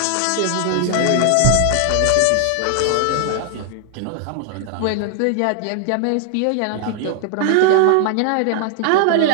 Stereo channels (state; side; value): different; both; correlation 0.00